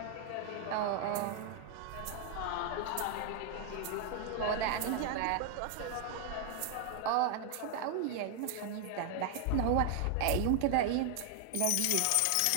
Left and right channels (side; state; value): both; different; correlation 0.00